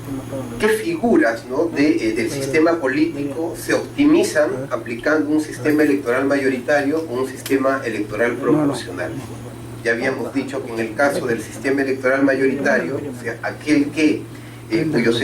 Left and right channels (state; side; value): identical; both; correlation 1.00